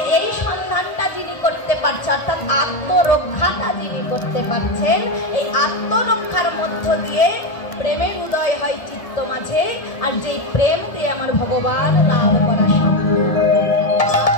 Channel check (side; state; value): right; late; 1.7 ms